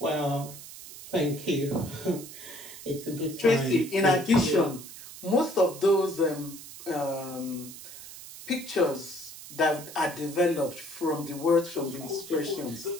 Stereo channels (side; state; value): right; noise; hiss, 14 dB below the sound